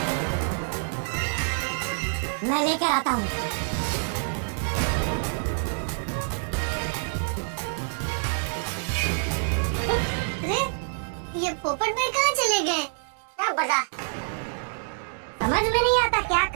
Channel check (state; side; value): silent; left; 58 dB below the other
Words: मैं लेकर आता हूँ। अरे, ये पोपट भाई कहाँ चले गए? क्या बता? समझ में नहीं आता क्या